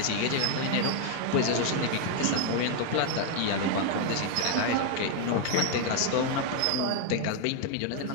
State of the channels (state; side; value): different; both; correlation 0.00